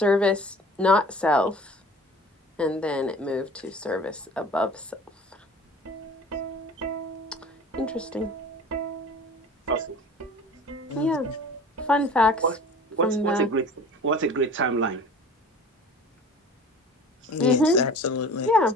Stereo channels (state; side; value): normal; both; correlation 0.43